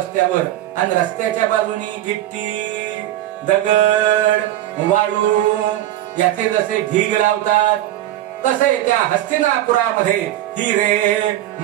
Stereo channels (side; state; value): left; quieter; 13.6 dB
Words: आणि रस्त्याच्या बाजूनी गिट्टी, दगड, वाळू याचे जसे ढीग लावतात तसे त्या हस्तिनापुरामध्ये हिरे,